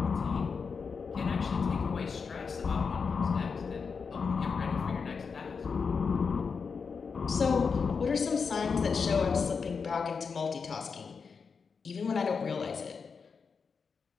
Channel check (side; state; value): right; quieter; 5.5 dB